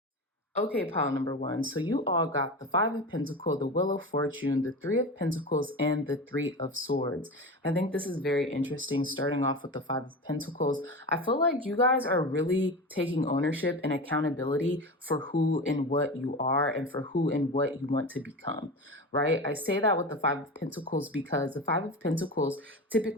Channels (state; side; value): normal; both; correlation 0.27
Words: Okay, pile number 1. So you all got the 5 of Pentacles, the Wheel of Fortune, the 3 of Pentacles, and the 3 of Swords. I think this is very interesting, starting off with the 5 of Pentacles. I feel like you guys are really taking ownership and accountability for who and what you are and for who and what you want to become, right? I say that with the 5 of Pentacles because the 5 of Pentacles